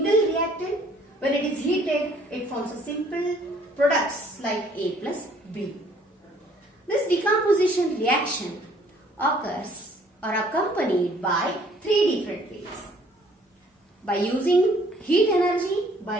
reactant. When it is heated, it forms a simple products like A plus B. This decomposition reaction occurs or accompanied by three different ways. By using heat energy,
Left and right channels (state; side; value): normal; both; correlation 0.60